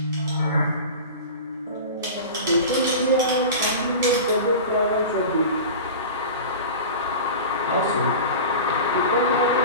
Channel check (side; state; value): both; inverted; correlation -0.32